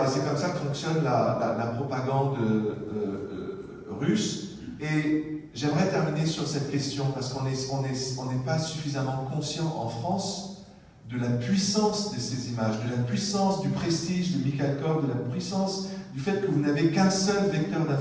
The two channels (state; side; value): identical; both; correlation 1.00